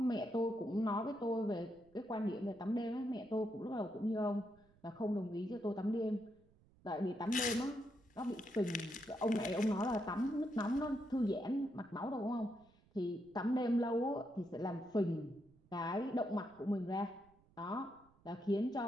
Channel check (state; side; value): noise; right; rumble, 30 dB below the sound